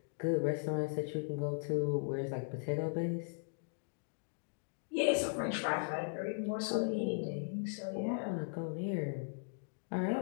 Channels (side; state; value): right; silent; digital silence